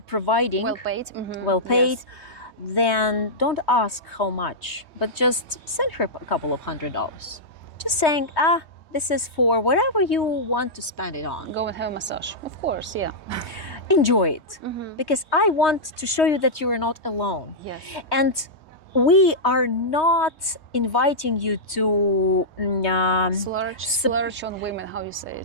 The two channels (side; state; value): right; late; 3.2 ms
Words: providing, well paid, then don't ask how much, but just send her a couple of $100. Just saying, this is for whatever you want to spend it on. Go and have a massage, of course, yeah. Enjoy it, because I want to show you that you are not alone. Yes. And we are not inviting you to splurge on women, how you say